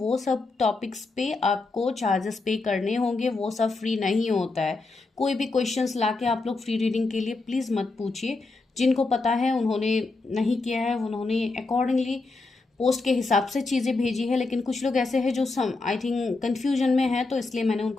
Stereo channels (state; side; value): quieter; right; 3.6 dB